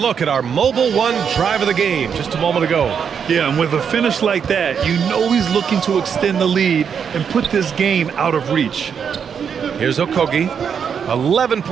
at our Mobile One drive of the game just a moment ago. Yeah, and with a finish like that, you know he's looking to extend the lead and put this game out of reach. Here's Okogie. 11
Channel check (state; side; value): quieter; left; 7.1 dB